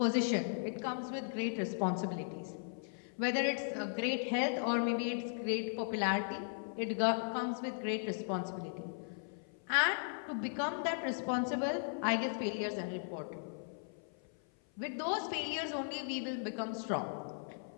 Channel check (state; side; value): silent; right; 53 dB below the other